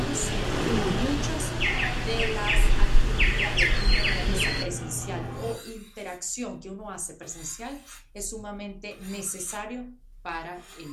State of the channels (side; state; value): both; identical; correlation 1.00